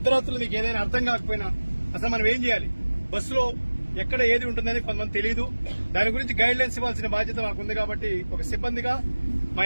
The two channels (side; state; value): both; inverted; correlation -1.00